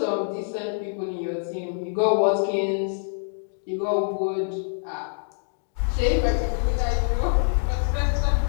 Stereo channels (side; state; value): right; silent; digital silence